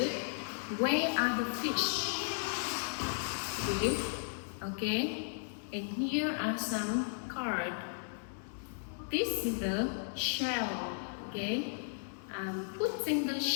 Where are the fish? Good. Okay. And here are some cards. This is the shell. Okay. I'm putting the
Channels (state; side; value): silent; right; 54 dB below the other